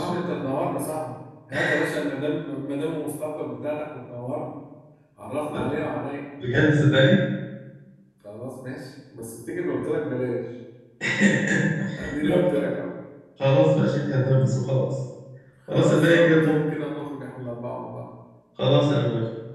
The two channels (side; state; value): both; identical; correlation 1.00